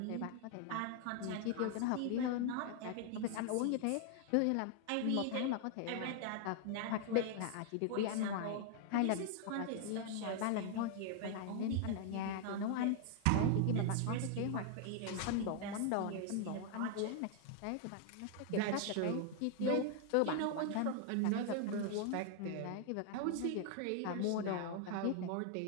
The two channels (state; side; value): different; both; correlation 0.00